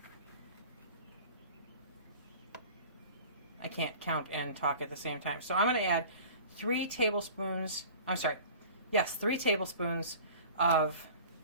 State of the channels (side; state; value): both; inverted; correlation -0.43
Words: I can't count and talk at the same time, so I'm going to add 3 tablespoons, I'm sorry, yes, 3 tablespoons of